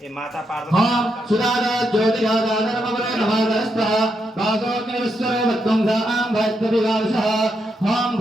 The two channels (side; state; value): both; normal; correlation 0.81